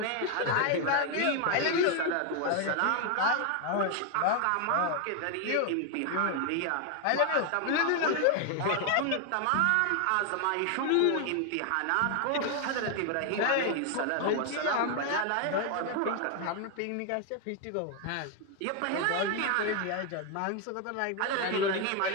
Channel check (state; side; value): different; both; correlation 0.01